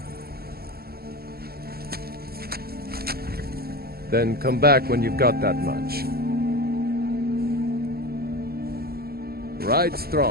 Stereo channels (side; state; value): left; late; 0.45 ms